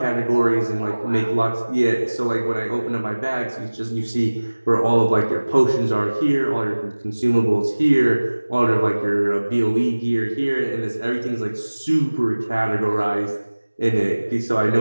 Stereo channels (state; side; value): inverted; both; correlation -1.00